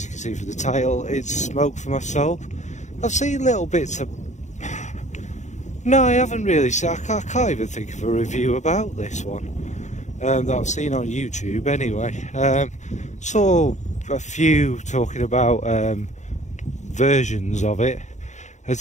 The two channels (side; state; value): right; late; 0.34 ms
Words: you can see from the title, it's Smoke for My Soul. I've seen little bits of... No, I haven't really seen... I can't even think of a review about this one that I've seen on YouTube anyway. Saw a few talking about versions of it, and